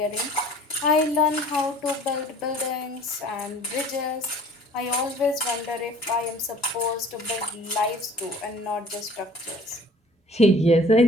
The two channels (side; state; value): both; normal; correlation 0.50